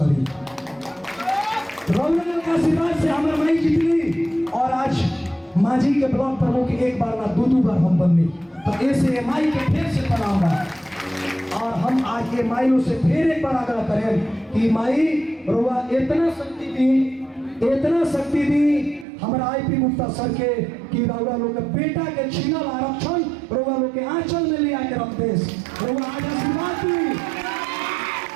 करी। रौनक के आशीर्वाद से हमरा माई जीतली और आज मांझी के ब्लॉक प्रमुख एक बार ना दो बार हम बननी, तो ऐसे माई के फिर से प्रणाम बा। और हम आज के माइयों से फिर एक बार आग्रह करें कि माई रोवा इतना शक्ति दी हमारा आईपी गुप्ता सर के कि रउआ लोग के बेटा के छीनल आरक्षण रउआ लोग के आंचल में ले आके रख देस। रउआ आज आशीर्वाद दी,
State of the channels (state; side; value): drops out; left; at 19.1 s